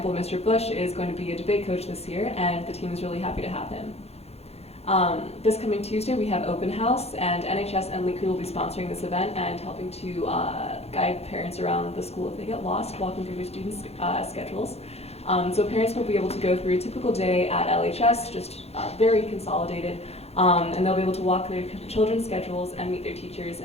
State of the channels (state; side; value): late; right; 0.30 ms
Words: Mr. Bush is going to be a debate coach this year, and the team is really happy to have him. This coming Tuesday, we have open house, and NHS and Lake Crew will be sponsoring this event and helping to guide parents around the school if they get lost, walking through their students' schedules. So parents will be able to go through a typical day at LHS, just very consolidated, and they'll be able to walk their children's schedules and meet their teachers